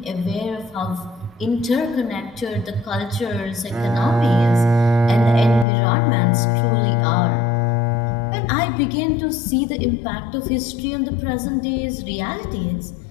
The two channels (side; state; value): right; drops out; at 5.7 s